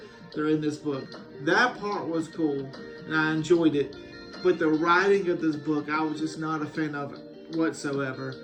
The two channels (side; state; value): both; identical; correlation 1.00